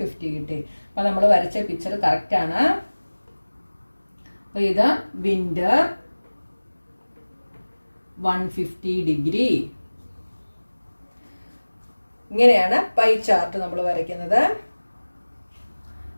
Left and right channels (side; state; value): both; inverted; correlation -1.00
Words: കിട്ടി. അപ്പൊ നമ്മൾ വരച്ച പിക്ചർ കറക്റ്റ് ആണ്. അപ്പൊ ഇത് വിന്റർ 150 ഡിഗ്രി. ഇങ്ങനെയാണ് പൈ ചാർട്ട് നമ്മൾ വരയ്ക്കുന്നത്.